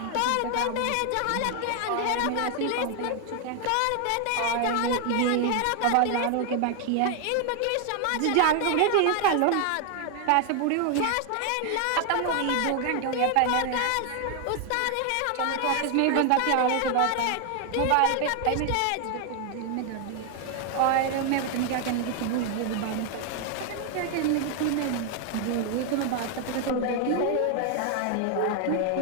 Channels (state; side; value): different; both; correlation 0.00